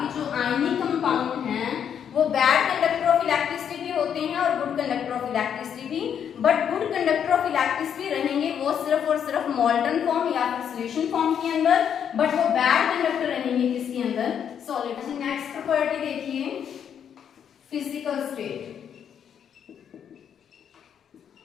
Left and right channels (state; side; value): quieter; right; 8.4 dB